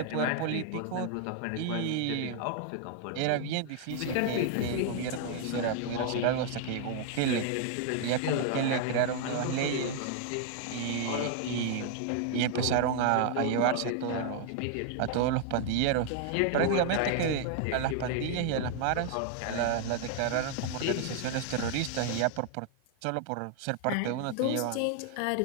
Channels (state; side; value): different; both; correlation 0.00